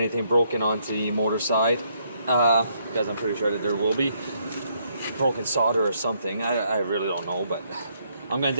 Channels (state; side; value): inverted; both; correlation -0.72